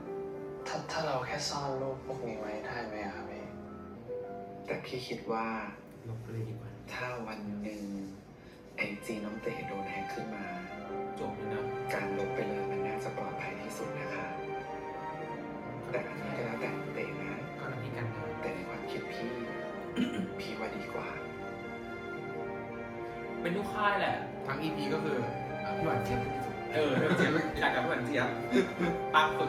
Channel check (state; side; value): identical; both; correlation 1.00